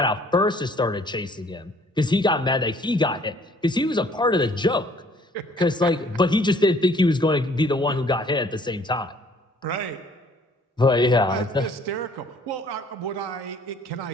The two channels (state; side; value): normal; both; correlation 0.58